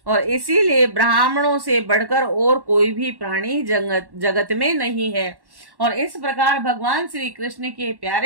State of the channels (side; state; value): left; late; 1.1 ms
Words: और इसीलिए ब्राह्मणों से बढ़कर और कोई भी प्राणी जगत में नहीं है। और इस प्रकार भगवान श्री कृष्ण के